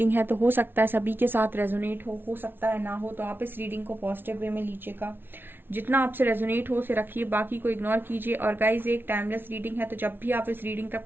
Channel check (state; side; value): late; left; 0.10 ms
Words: है तो हो सकता है सभी के साथ रेजोनेट हो सकता है ना हो, तो आप इस रीडिंग को पॉजिटिव वे में लीजिएगा। जितना आपसे रेजोनेट हो उसे रखिए, बाकी को इग्नोर कीजिए। और गाइज, एक टाइमलेस रीडिंग है तो जब भी आप इस रीडिंग